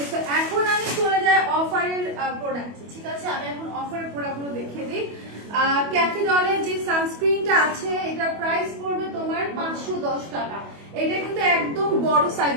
সো এখন আমি চলে যাই অফারের প্রোডাক্ট, ঠিক আছে? আমি এখন অফারের প্রোডাক্টগুলো দেখিয়ে দিই। ক্যাফে ডলের যে সানস্ক্রিনটা আছে এটা প্রাইস পড়বে তোমার 510 টাকা। এটা কিন্তু একদম বড় সাইজ,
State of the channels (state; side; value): late; left; 25 ms